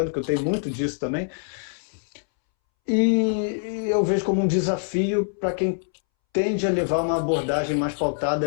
eu tenho muito disso também. E eu vejo como um desafio para quem tende a levar uma abordagem mais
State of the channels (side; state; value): right; silent; 62 dB below the other